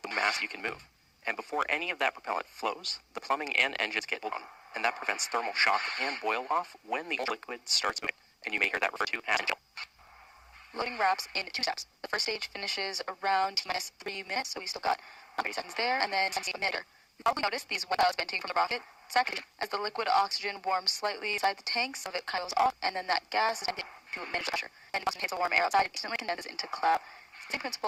the mass you can move. And before any of that propellant flows, the plumbing and engines get blown, and that prevents thermal shock and boil off when the liquid starts moving. And you may hear that referred to as intentional. Loading wraps in 2 steps. The first stage finishes around T-minus 3 minutes, so we still got 30 seconds there, and then a minute. You probably noticed these wet clouds venting from the rocket. Second, as the liquid oxygen warms slightly inside the tank, some of it kind of goes off, and then that gas is vented to manage the pressure. And once it hits the warm air outside, it instantly condenses into cloud. Same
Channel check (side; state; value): both; identical; correlation 1.00